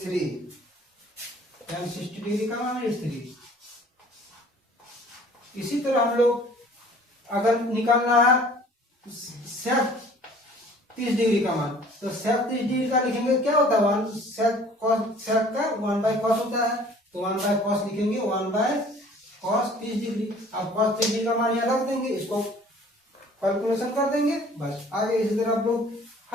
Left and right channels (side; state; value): both; normal; correlation 0.52